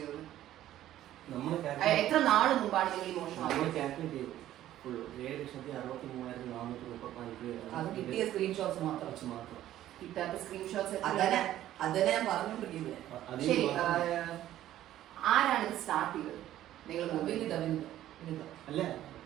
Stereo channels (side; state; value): left; quieter; 13.0 dB